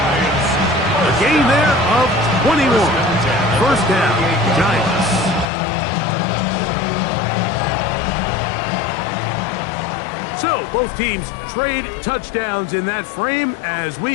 A gain there of 21. First down, Giants. So, both teams trade touchdowns in that frame as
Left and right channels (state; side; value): drops out; right; at 5.5 s